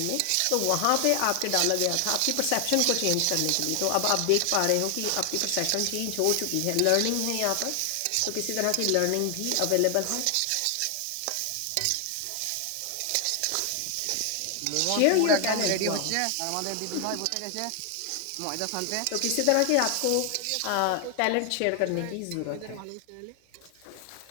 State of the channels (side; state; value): both; different; correlation 0.00